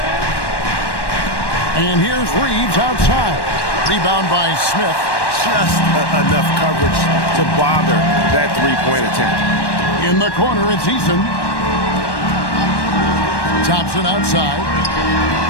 And here's Reeves outside. Rebound by Smith. Just enough coverage to bother that three-point attempt. In the corner, it's Eason. Thompson outside.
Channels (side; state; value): right; late; 1.1 ms